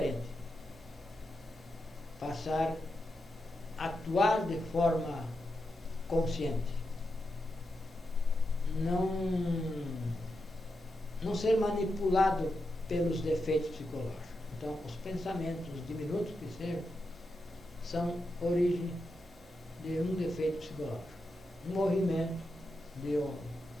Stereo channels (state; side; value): normal; both; correlation 0.87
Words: Passar a atuar de forma consciente. Não ser manipulado pelos defeitos psicológicos. Então, os pensamentos diminutos que sejam são origem de um defeito psicológico. Um movimento de